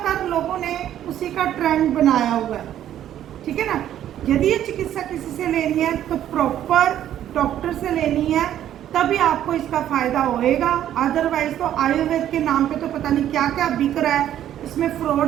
लोगों ने उसी का ट्रेंड बनाया हुआ है, ठीक है ना। यदि ये चिकित्सा किसी से लेनी है तो प्रॉपर डॉक्टर से लेनी है, तभी आपको इसका फ़ायदा होएगा। अदरवाइज तो आयुर्वेद के नाम पे तो पता नहीं क्या क्या बिक रहा है, इसमें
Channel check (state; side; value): quieter; left; 11.3 dB